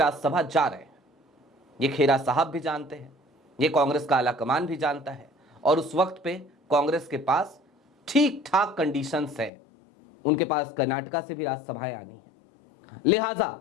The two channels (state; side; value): drops out; right; at 9.5 s